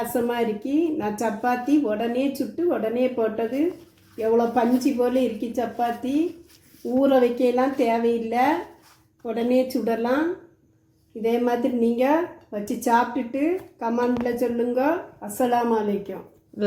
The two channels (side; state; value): both; identical; correlation 1.00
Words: இருக்கு. நான் சப்பாத்தி உடனே சுட்டு உடனே போட்டது. எவ்வளோ பஞ்சு போல் இருக்கு சப்பாத்தி. ஊற வைக்கலாம் தேவையில்லை, உடனே சுடலாம். இதே மாதிரி நீங்கள் வச்சு சாப்பிட்டுட்டு கமெண்டில் சொல்லுங்க. அஸ்ஸலாமு அலைக்கும்.